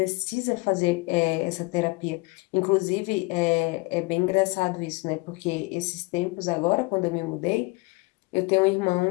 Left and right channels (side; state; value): right; quieter; 25.7 dB